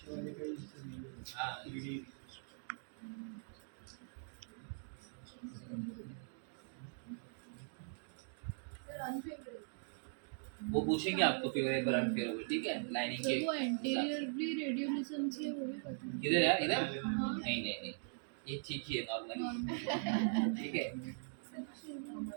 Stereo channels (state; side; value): silent; left; digital silence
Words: वो पूछेंगे आपको फेवरेबल अनफेवरेबल, ठीक है। लाइनिंग के वो एंटीरियरली रेडियोलिसेंसी है वो भी पता है। इधर यार इधर नहीं नहीं नहीं ये ठीक ही है नॉर्मली, ठीक है।